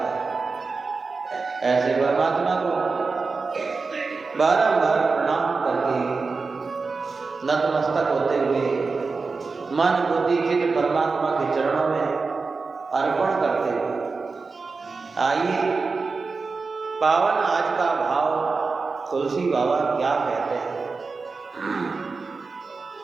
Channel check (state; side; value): quieter; left; 4.3 dB